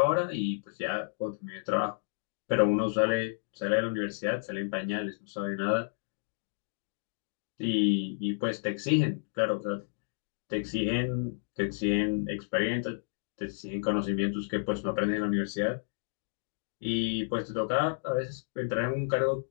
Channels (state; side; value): silent; right; digital silence